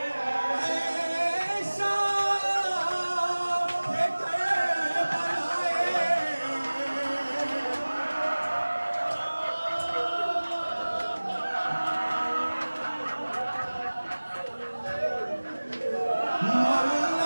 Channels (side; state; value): both; inverted; correlation -1.00